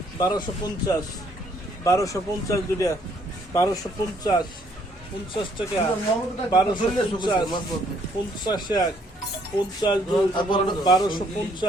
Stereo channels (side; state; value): both; normal; correlation 0.66